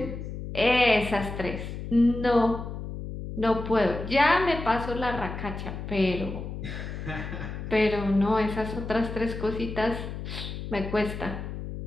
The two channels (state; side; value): noise; left; hum, 7 dB below the sound